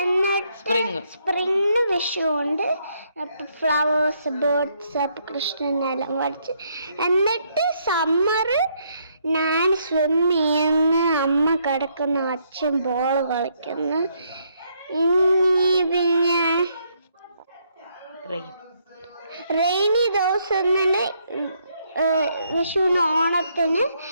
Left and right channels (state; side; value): inverted; both; correlation -0.73